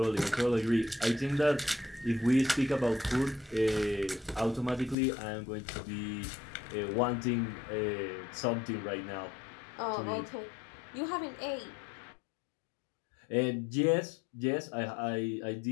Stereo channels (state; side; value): drops out; right; at 5.0 s